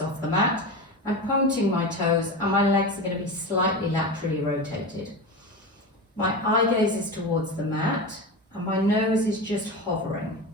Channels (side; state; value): both; normal; correlation 0.24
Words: the mat. I'm pointing my toes and my legs are going to be slightly laterally rotated. My eye gaze is towards the mat and my nose is just hovering.